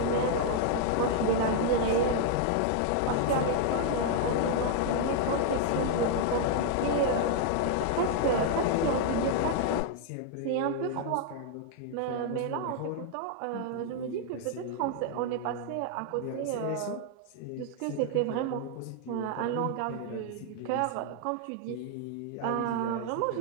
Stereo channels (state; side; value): different; both; correlation 0.00